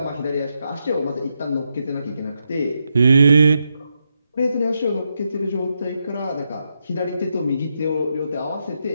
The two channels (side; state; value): both; inverted; correlation -0.84